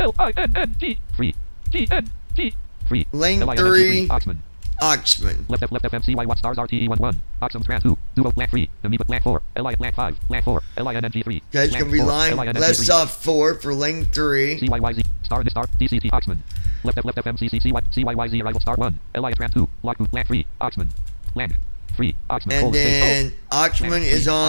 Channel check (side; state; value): both; inverted; correlation -1.00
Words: 3. GNG 3. Lane LINNG 3. Oxman. Oxman. Left FMCY Watt stars RTE 11. Oxum Tran 2. Duo Land 3. Amoeba Land 4. Land 5. Land 4. LINNG 3. Okay. It's going to be line left soft 4 for lane 3. CYYZ star DCT Oxman. Left FMCC CYYZ arrival star 1. LI Tran 2. Lockboot Land 3. Oxman. Land 3. Oxman. And then Oxman Land is 3,